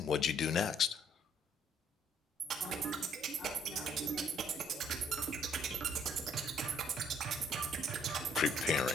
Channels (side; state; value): both; normal; correlation 0.63